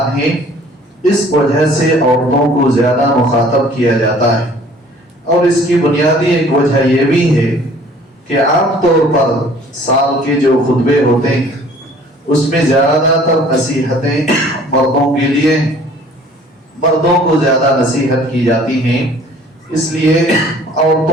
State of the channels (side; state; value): both; normal; correlation 0.53